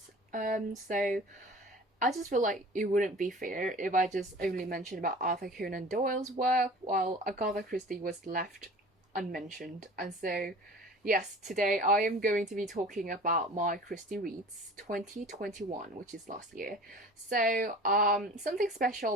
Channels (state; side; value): normal; both; correlation 0.42